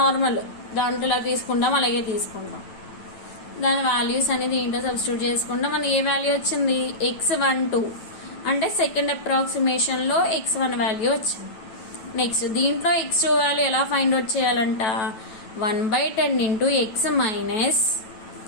దాంట్లో ఇలా తీసుకుంటాం, అలాగే తీసుకుంటాం. దాని వాల్యూస్ అనేది దీంట్లో సబ్స్టిట్యూట్ చేసుకుంటాం. మనకి ఏ వాల్యూ వచ్చింది, X12 అంటే సెకండ్ అప్రాక్సిమేషన్లో X1 వాల్యూ వచ్చింది. నెక్స్ట్ దీంట్లో X2 వాల్యూ ఎలా ఫైండ్ అవుట్ చేయాలంట, 1/10 × X మైనస్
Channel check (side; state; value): right; late; 9.1 ms